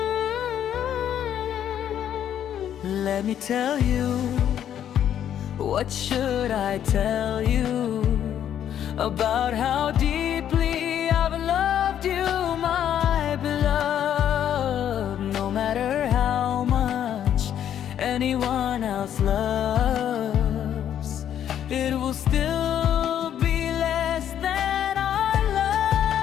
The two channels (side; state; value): right; quieter; 10.0 dB